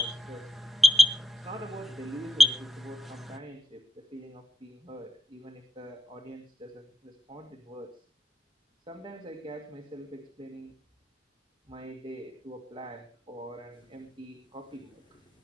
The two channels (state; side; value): normal; both; correlation 0.86